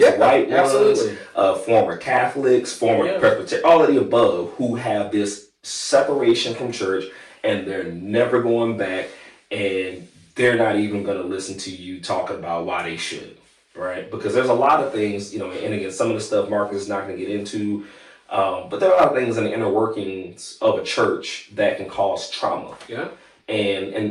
white ones, former Catholics, former Presbyterian, all of the above, who have this separation from church, and they're never going back, and they're not even going to listen to you talking about why they should, right? Because there's a lot of things, and again, some of the stuff Marcus is not going to get into, but there are a lot of things in the inner workings of a church that can cause trauma. Yeah.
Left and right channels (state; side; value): identical; both; correlation 1.00